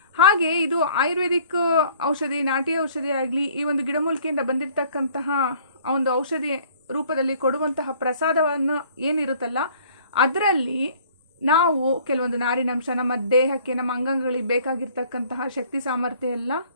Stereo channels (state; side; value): inverted; both; correlation -0.55